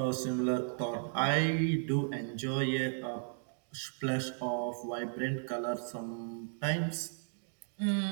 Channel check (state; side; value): silent; left; digital silence